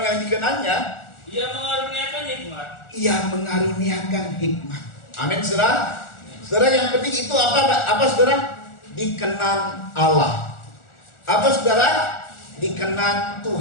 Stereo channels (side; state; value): right; late; 1.4 ms